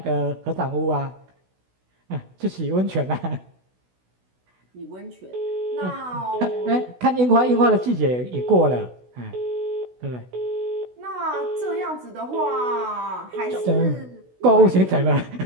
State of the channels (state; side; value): late; left; 16 ms